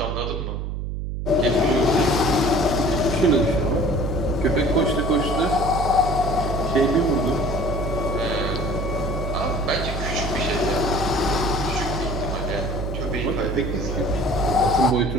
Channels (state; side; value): noise; right; hum, 4 dB below the sound